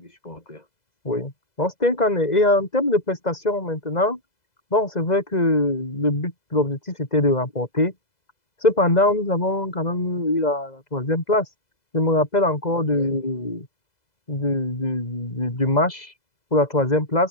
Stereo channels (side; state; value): right; late; 2.0 ms